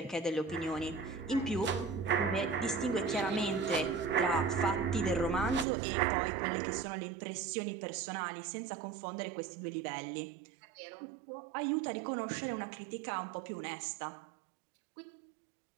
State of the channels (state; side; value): drops out; left; at 5.7 s